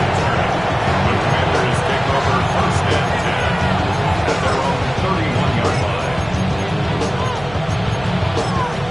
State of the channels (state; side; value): noise; right; hum, 16 dB below the sound